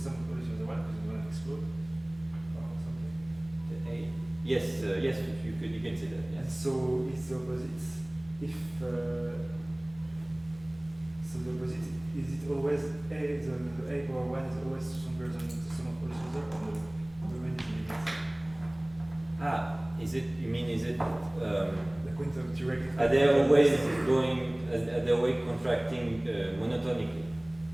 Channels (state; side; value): noise; right; rumble, 26 dB below the sound